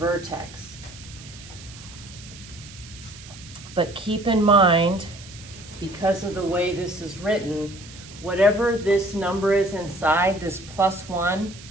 But keep in mind, because of the way this is written, whatever this number is inside, this +1,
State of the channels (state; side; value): noise; right; hiss, 18 dB below the sound